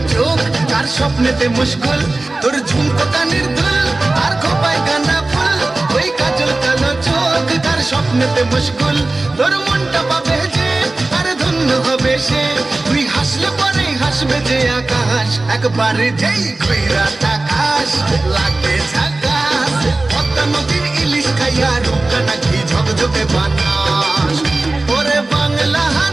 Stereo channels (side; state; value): left; quieter; 3.0 dB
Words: স্বপ্নেতে মুশকুল তোর ঝুমকো কানের দুল আর খোপায় গাঁদা ফুল ওই কাজল কালো চোখ তার স্বপ্নেতে মুশকুল তোর মনটা পাবে যে আর ধন্য হবে সে তুই হাসলে পরে হাসবে যে আকাশ একবারে যেই ঘুইরা তাকাশ লাগে ঝাকাশ পদ্মা নদীর ইলিশ খাইয়া রূপটা নাকি ঝকঝকে বানাস ওরে বাংলা